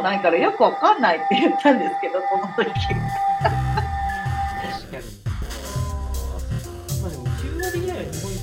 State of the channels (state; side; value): identical; both; correlation 1.00